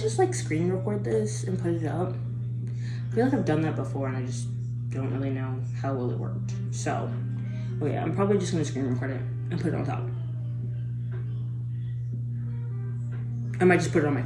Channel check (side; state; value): both; identical; correlation 1.00